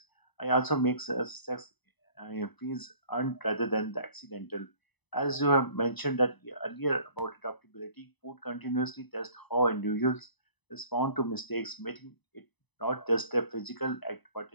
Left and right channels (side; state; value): right; late; 1.0 ms